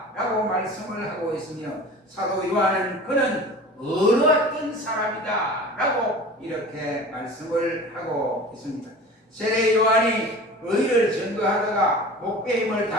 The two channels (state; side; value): normal; both; correlation 0.38